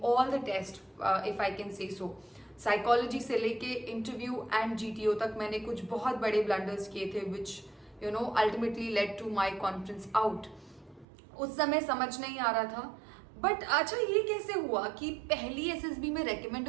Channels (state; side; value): drops out; left; at 11.1 s